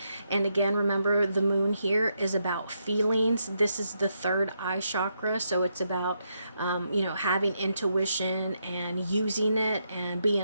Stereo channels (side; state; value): both; inverted; correlation -0.81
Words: And again, remember, the moon here is about feelings. This is the third eye chakra, so it's about having intuition and using it and